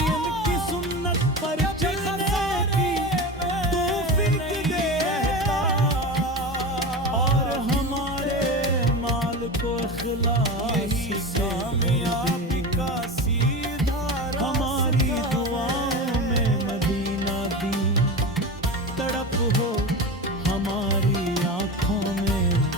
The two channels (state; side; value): normal; both; correlation 0.26